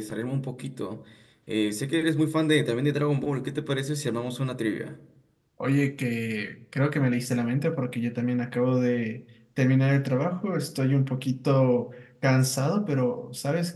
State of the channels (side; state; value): both; identical; correlation 1.00